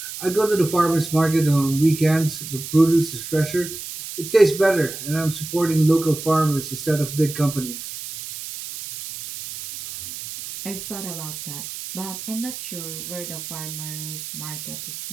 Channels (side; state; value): right; noise; hiss, 9 dB below the sound